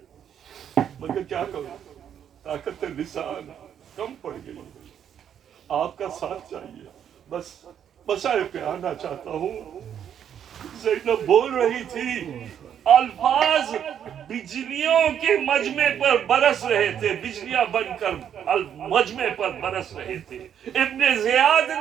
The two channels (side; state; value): left; quieter; 9.1 dB